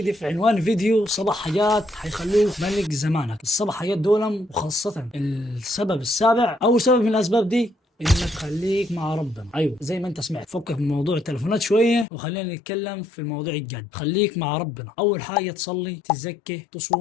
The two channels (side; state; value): right; drops out; at 12.1 s